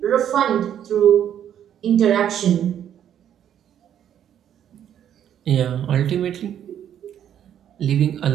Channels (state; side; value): quieter; left; 9.9 dB